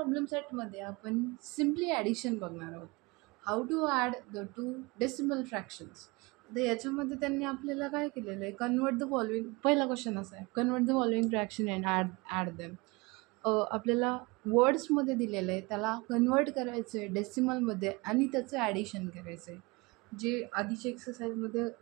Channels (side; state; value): left; quieter; 25.5 dB